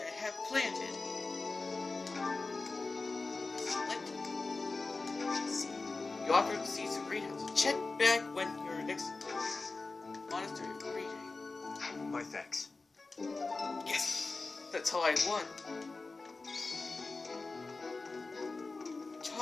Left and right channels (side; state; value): right; quieter; 3.7 dB